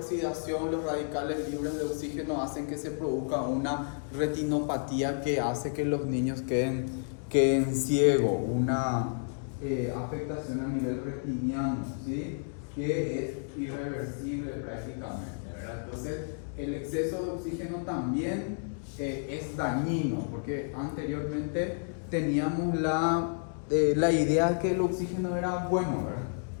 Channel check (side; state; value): right; silent; digital silence